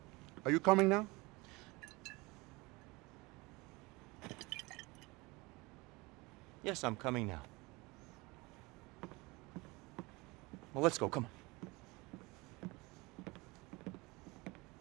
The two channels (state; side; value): quieter; left; 24.2 dB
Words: Are you coming now? Yes, I'm coming now. Well, let's go, come on.